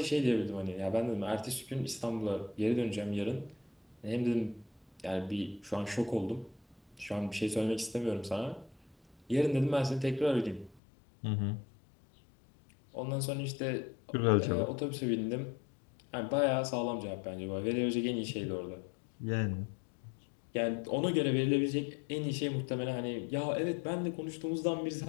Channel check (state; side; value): drops out; right; at 10.8 s